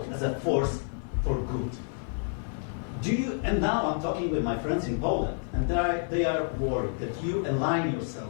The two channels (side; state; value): right; silent; digital silence